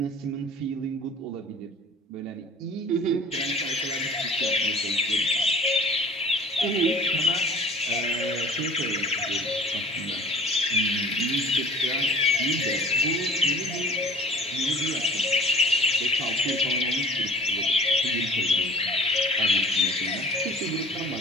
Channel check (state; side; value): normal; both; correlation 0.46